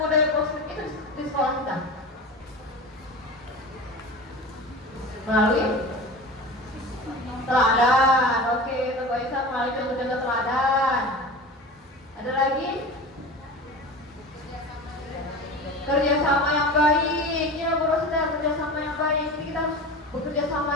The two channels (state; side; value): normal; both; correlation 0.32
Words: budaya positif itu di sekolah kita? Melalui teladan. Oke, Bapak Isa melalui contoh-contoh teladan. Ada lagi? Kerjasama yang baik. Ya, Bu Rosita, kerjasama yang baik. Jadi kita harus bekerja sama